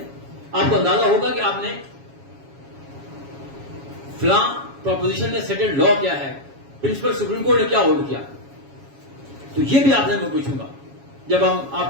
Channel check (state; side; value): late; left; 7.2 ms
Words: آپ کو اندازہ ہوگا کہ آپ نے فلاں پروپوزیشن میں سیٹلڈ لا کیا ہے, پرنسپل سپریم کورٹ نے کیا ہولڈ کیا. تو یہ بھی آپ نے میں پوچھوں گا جب ہم